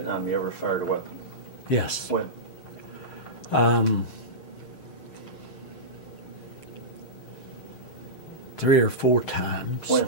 you ever fired a weapon? Yes. When? 3 or 4 times. When?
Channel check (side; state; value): right; late; 6.5 ms